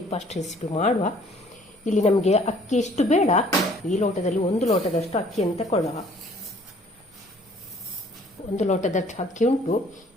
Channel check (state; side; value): normal; both; correlation 0.57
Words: ರೆಸಿಪಿ ಮಾಡುವ. ಇಲ್ಲಿ ನಮಗೆ ಅಕ್ಕಿ ಎಷ್ಟು ಬೇಡ, ಈ ಲೋಟದಲ್ಲಿ 1 ಲೋಟದಷ್ಟು ಅಕ್ಕಿಯನ್ನು ತಗೊಳ್ಳುವ. 1 ಲೋಟದಷ್ಟು ಅಕ್ಕಿ ಉಂಟು.